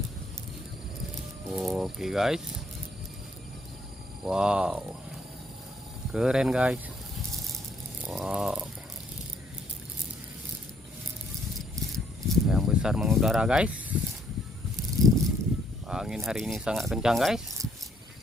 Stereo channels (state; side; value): normal; both; correlation 0.68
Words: Oke guys, wow, keren guys, wow, yang besar mengudara guys. Angin hari ini sangat kencang guys.